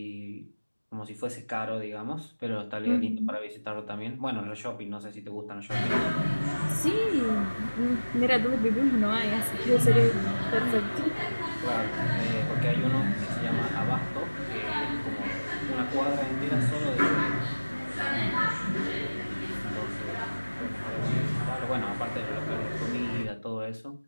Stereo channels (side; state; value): both; inverted; correlation -1.00